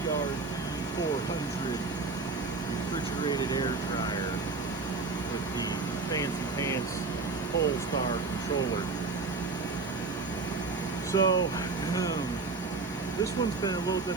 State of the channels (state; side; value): quieter; left; 4.0 dB